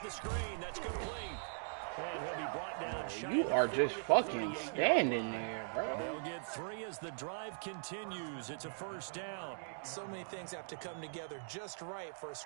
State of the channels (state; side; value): silent; left; digital silence